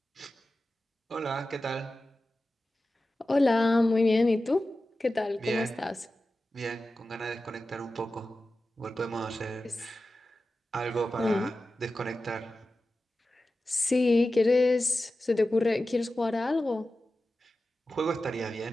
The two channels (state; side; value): normal; both; correlation 0.94